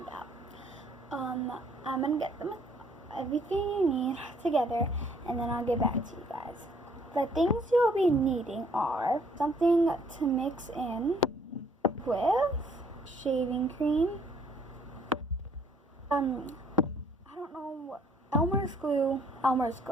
out. I'm going to get everything you need together, and then I'll get back to you guys. The things you'll be needing are something to mix in with shaving cream. I don't know what, Elmer's glue. I don't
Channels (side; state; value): both; normal; correlation 0.62